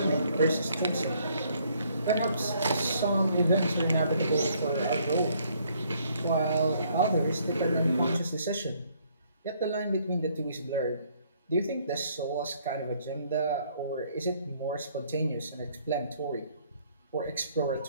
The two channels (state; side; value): inverted; both; correlation -0.65